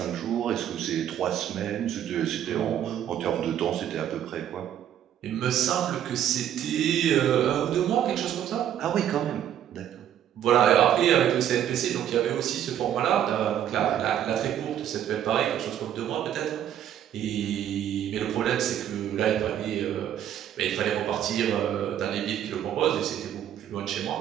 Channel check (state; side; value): quieter; left; 10.4 dB